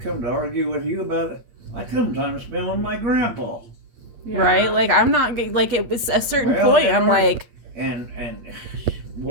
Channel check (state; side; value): late; left; 8.7 ms